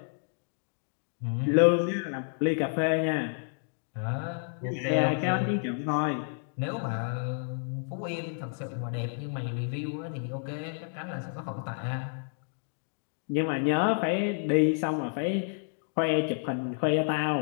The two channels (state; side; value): silent; right; 58 dB below the other